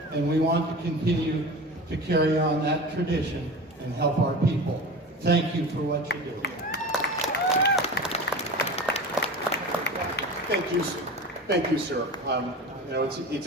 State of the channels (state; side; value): normal; both; correlation 0.32